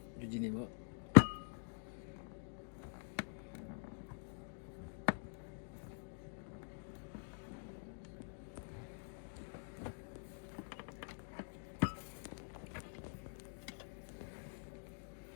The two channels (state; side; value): silent; right; digital silence